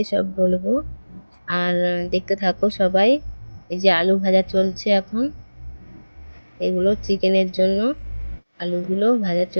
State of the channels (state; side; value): inverted; both; correlation -1.00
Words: সব বলবো, আর দেখতে থাকো সবাই। এই যে আলু ভাজা চলছে এখন, এগুলো চিকেনের জন্য আলুগুলো ভাজা